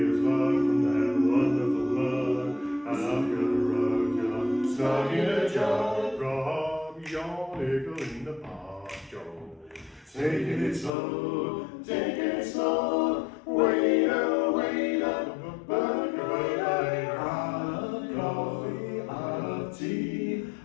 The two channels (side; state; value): right; drops out; at 10.9 s